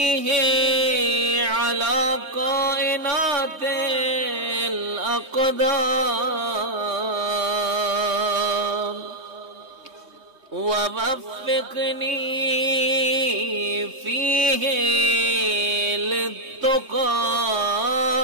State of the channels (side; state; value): left; late; 3.2 ms